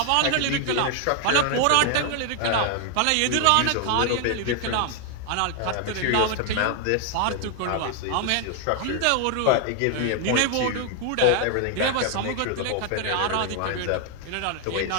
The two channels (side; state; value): both; different; correlation 0.00